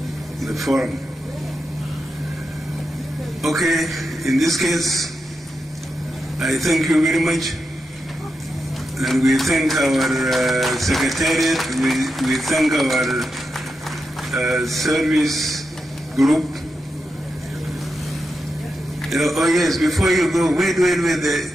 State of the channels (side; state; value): both; normal; correlation 0.87